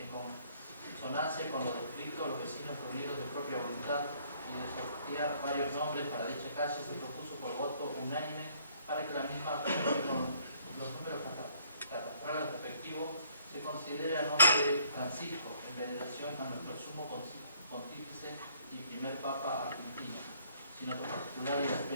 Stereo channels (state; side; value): inverted; both; correlation -0.65